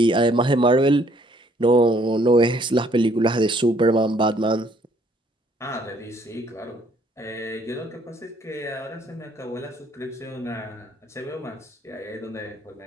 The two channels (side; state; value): both; normal; correlation 0.63